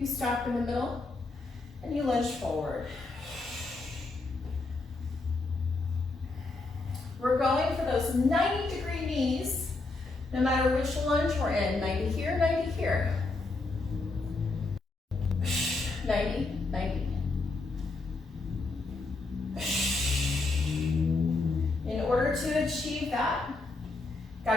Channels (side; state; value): right; quieter; 3.4 dB